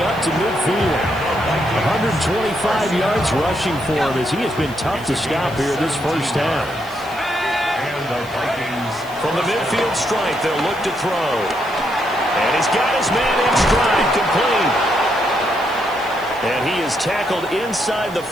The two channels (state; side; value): noise; right; hiss, 22 dB below the sound